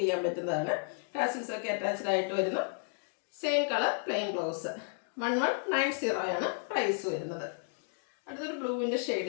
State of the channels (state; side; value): silent; right; 56 dB below the other